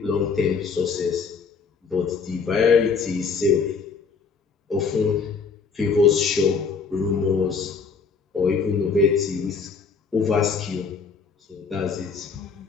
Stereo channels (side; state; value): right; quieter; 5.3 dB